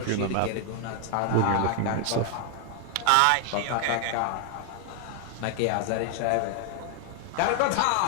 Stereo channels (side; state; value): both; different; correlation 0.00